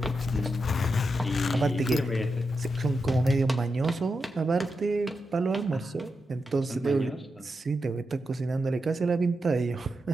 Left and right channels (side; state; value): both; normal; correlation 0.87